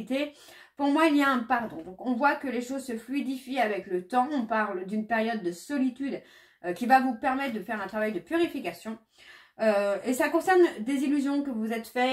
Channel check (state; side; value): identical; both; correlation 1.00